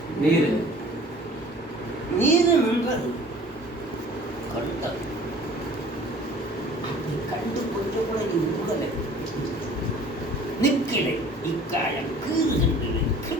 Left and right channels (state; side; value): normal; both; correlation 0.49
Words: நீரு. நீரு நின்றது. கண்ட அப்படி கண்டு கொஞ்சம் கூட நீ உருகலை, நிற்கிலை, இக்காயம் கீறுகின்றன,